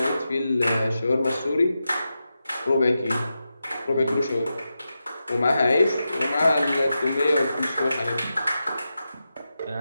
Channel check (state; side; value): inverted; both; correlation -0.90